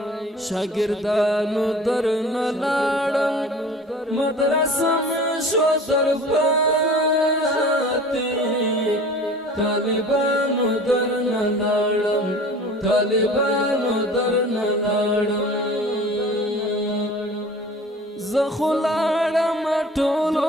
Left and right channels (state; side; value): normal; both; correlation 0.43